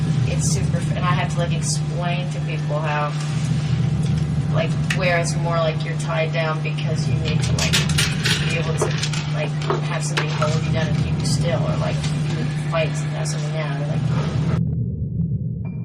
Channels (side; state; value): both; identical; correlation 1.00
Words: it's super, and I have to like explain to people how, like, where it's more like you're tied down because you need to like be able to like have somebody hold you down and keep you still, or like you fight to have something down, or like.